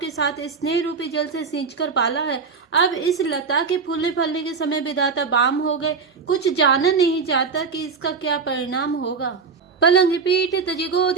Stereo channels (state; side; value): quieter; left; 5.2 dB